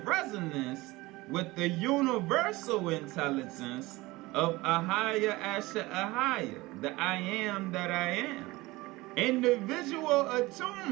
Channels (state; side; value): quieter; left; 20.7 dB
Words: resonance with the universal intelligence of Ahaya Asha Ahaya, the I am that I am. Individual